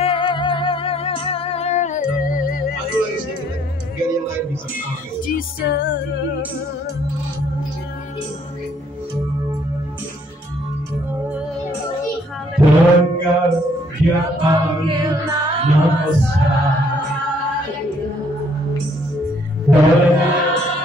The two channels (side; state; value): both; normal; correlation 0.65